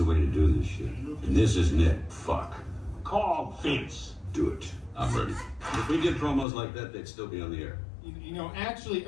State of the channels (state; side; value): drops out; right; at 6.5 s